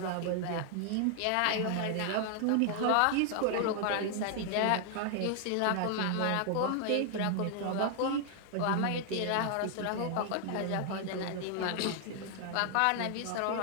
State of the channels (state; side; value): different; both; correlation 0.00